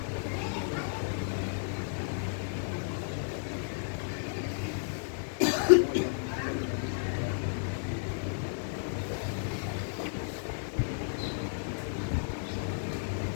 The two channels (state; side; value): silent; right; digital silence